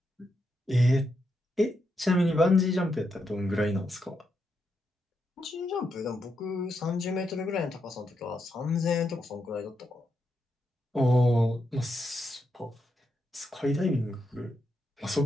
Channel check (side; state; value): both; normal; correlation 0.83